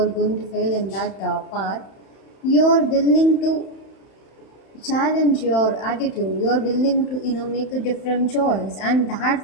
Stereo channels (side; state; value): right; late; 31 ms